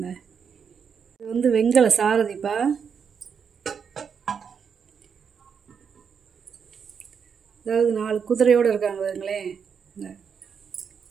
இது வந்து வெங்கல சாரதிப்பா. அதாவது 4 குதிரையோடு இருக்காங்க. பாருங்களேன்,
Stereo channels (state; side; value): quieter; left; 6.7 dB